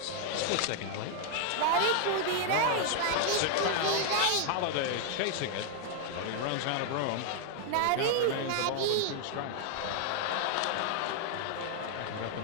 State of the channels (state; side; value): different; both; correlation 0.00